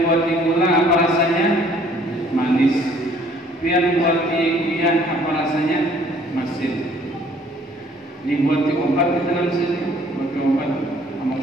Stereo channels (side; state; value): both; normal; correlation 0.58